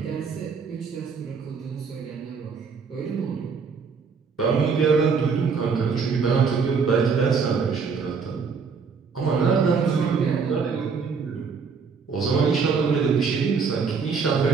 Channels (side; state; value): left; quieter; 5.5 dB